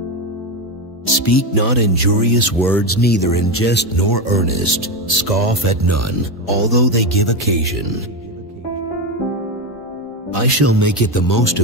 Speak not injurious words, neither in jest nor earnest. Scoff at none, although they give occasion. I shall make it the most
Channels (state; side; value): normal; both; correlation 0.14